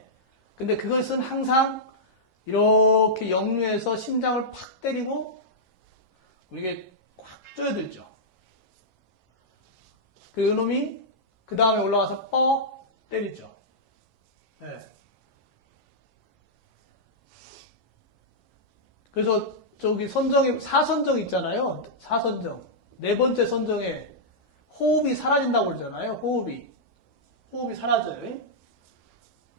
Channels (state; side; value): normal; both; correlation -0.11